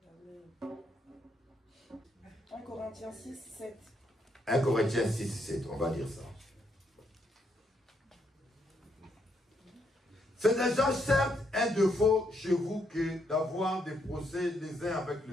1 Corinthiens 6, 7. 1 Corinthiens 6, 7, on va dire ça. C'est déjà certes un défaut chez vous que d'avoir des procès les uns avec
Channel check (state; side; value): normal; both; correlation 0.76